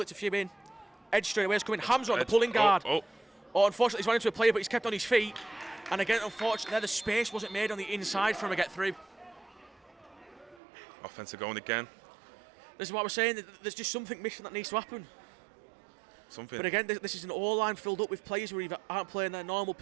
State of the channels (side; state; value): left; drops out; at 10.6 s